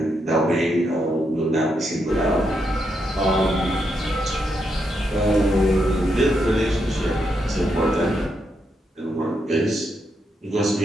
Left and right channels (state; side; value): normal; both; correlation 0.81